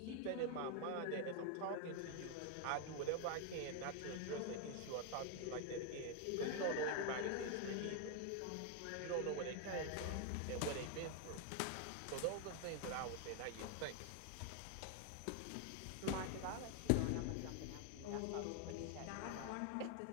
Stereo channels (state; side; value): different; both; correlation 0.01